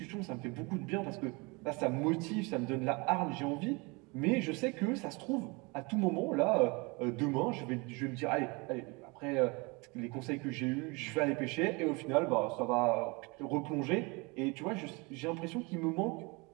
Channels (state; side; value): quieter; left; 27.7 dB